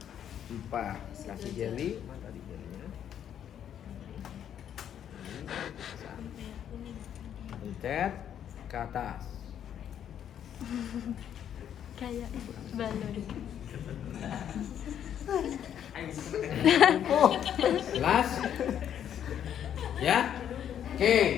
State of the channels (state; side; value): quieter; right; 9.6 dB